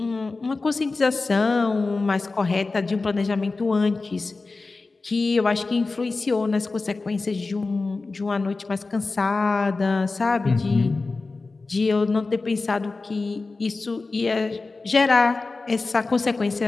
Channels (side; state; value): right; quieter; 3.7 dB